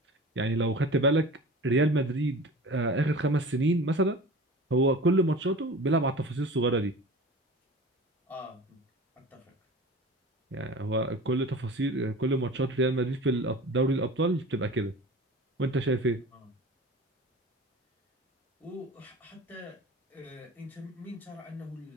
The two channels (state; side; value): normal; both; correlation 0.37